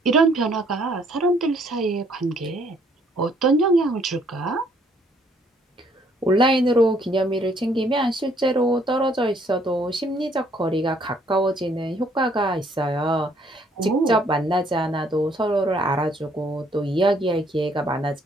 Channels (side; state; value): both; normal; correlation 0.65